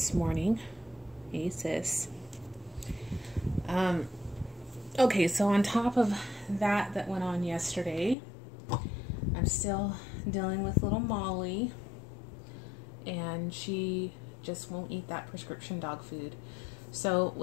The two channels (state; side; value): drops out; right; at 8.2 s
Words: morning. Hey, sis. Okay, so on top of that went on yesterday, I'm still dealing with little Molly, and she just won't eat that prescription dog food. So,